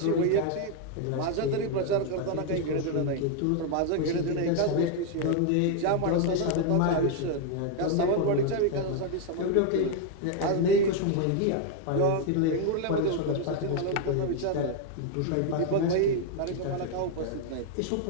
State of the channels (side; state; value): both; different; correlation 0.00